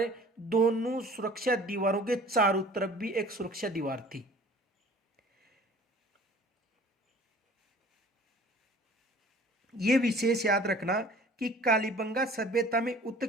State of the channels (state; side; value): normal; both; correlation 0.48